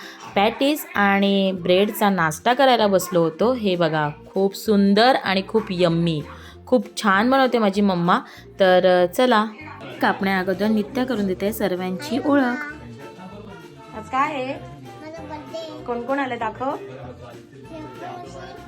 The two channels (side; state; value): both; identical; correlation 1.00